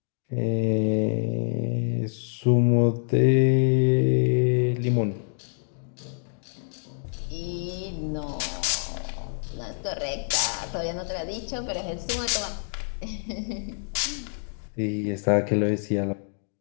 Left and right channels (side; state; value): right; silent; digital silence